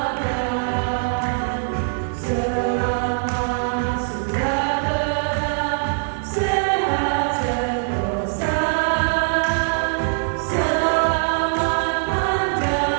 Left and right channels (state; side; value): silent; left; digital silence